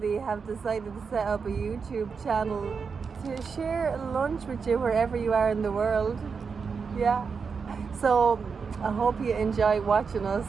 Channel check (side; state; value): left; quieter; 5.5 dB